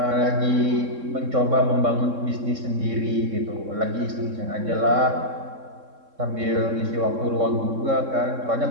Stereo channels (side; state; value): left; late; 3.6 ms